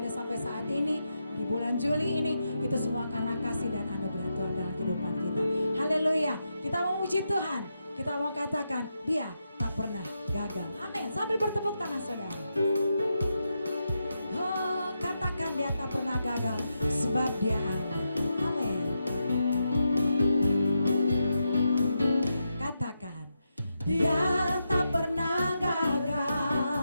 sampai saat ini, di bulan Juli ini, itu semua karena kasih dan anugerah Tuhan dalam kehidupan kita. Haleluya, kita memuji Tuhan. Kita mau katakan, Dia tak pernah gagal. Amin. Sambil bertepuk tangan saudara. Oh, katakan Dia tak pernah gagal, sebab Dia Allah. Amin. Katakan, Dia tak pernah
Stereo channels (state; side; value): inverted; both; correlation -0.86